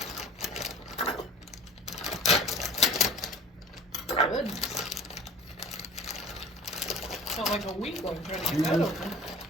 Goodness, felt like a weakling trying to get that open.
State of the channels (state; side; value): normal; both; correlation 0.43